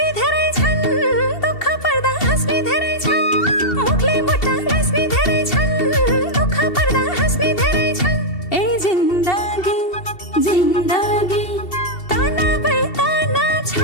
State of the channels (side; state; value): right; late; 2.7 ms